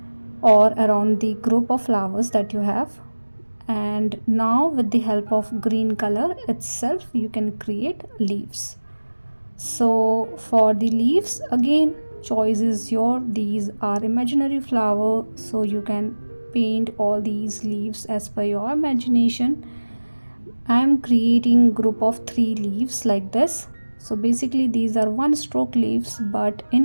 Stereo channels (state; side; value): inverted; both; correlation -1.00